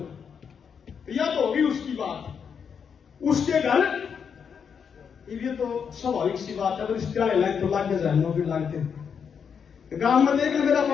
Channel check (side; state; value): right; quieter; 6.9 dB